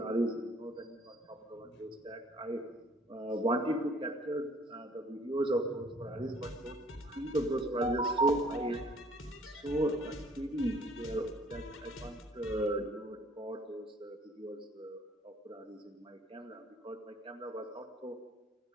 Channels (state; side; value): normal; both; correlation 0.57